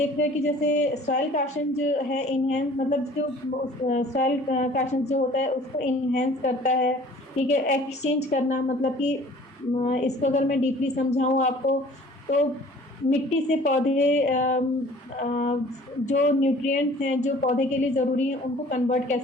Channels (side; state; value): both; normal; correlation 0.50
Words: रहे हैं कि जैसे सॉइल काशन जो है इनहेंस, मतलब जो सॉइल काशन जो होता है उसको इनहेंस करता है। ठीक है, एक्सचेंज करना, मतलब कि इसको अगर मैं डीपली समझाऊं आपको, तो मिट्टी से पौधे जो न्यूट्रिएंट्स हैं जो पौधे के लिए ज़रूरी हैं उनको कन्वर्ट